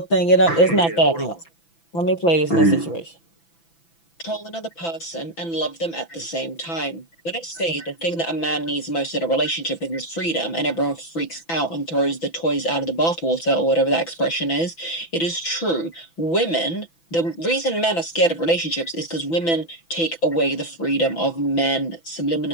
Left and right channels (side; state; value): right; late; 6.0 ms